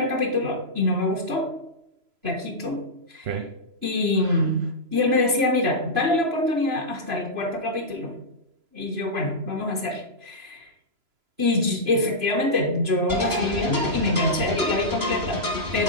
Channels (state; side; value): late; left; 3.0 ms